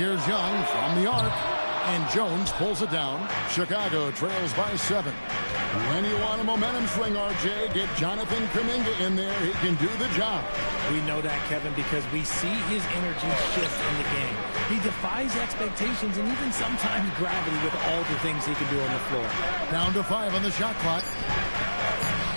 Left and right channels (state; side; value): inverted; both; correlation -1.00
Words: Young from the arc. And Jones pulls it down. Chicago trails by 7. When you want a momentum swing, RJ, get Jonathan Kuminga in there. He can do the job. We know that, Kevin, because we see his energy shift in the game. He defies expectations and even sometimes gravity with all the things he can do on the floor. Down to 5 on the shot clock.